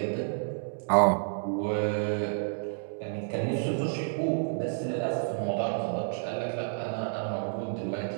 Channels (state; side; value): silent; left; digital silence